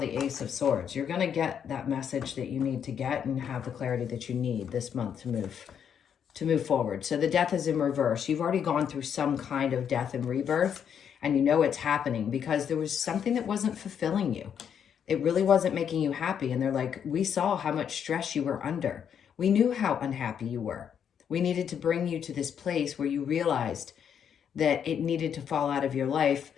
Ace of Swords. You're going to get that message that you need to get and have the clarity that you need this month to move forward. So the Death is in reverse. You've already gone through some kind of death and rebirth, and you know it's happening because there was something that wasn't fulfilling you. It really wasn't making you happy. And they're like, we saw how much stress you were under. We knew how unhappy you were. We needed to bring you to this place where you realized that it needed to fall out of your life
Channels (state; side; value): quieter; right; 8.2 dB